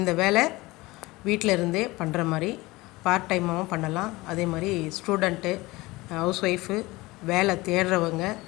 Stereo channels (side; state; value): right; quieter; 21.0 dB